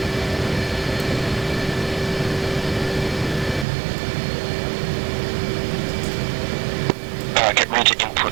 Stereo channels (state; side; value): drops out; left; at 3.7 s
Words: Alright, get ready to